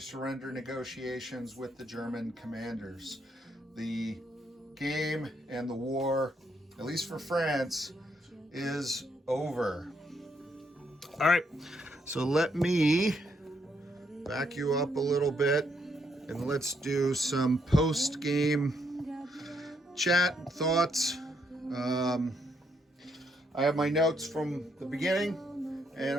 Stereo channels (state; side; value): normal; both; correlation 0.75